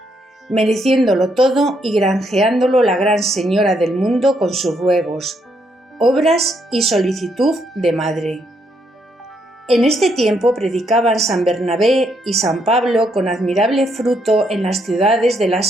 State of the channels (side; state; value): both; normal; correlation 0.75